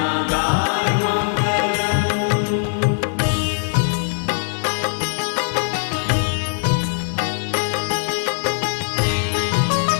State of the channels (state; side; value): silent; right; 60 dB below the other